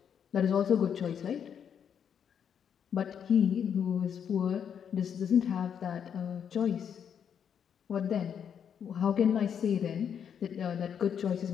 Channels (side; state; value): right; quieter; 8.0 dB